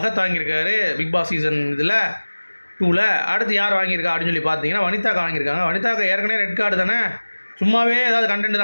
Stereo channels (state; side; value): inverted; both; correlation -1.00